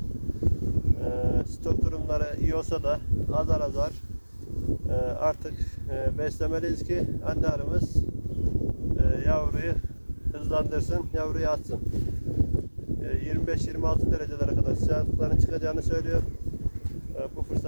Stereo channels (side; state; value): both; inverted; correlation -1.00